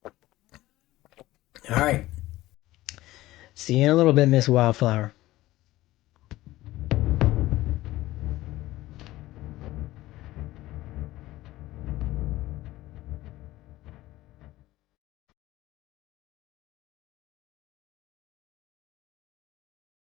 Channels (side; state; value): right; quieter; 16.9 dB